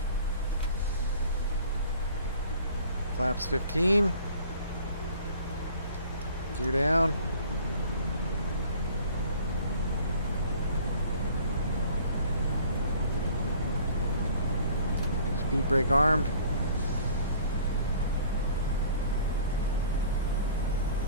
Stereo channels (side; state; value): both; inverted; correlation -0.51